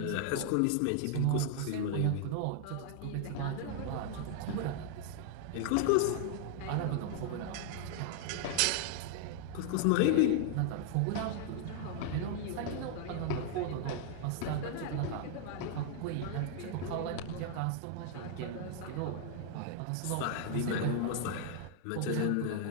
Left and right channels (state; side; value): different; both; correlation 0.00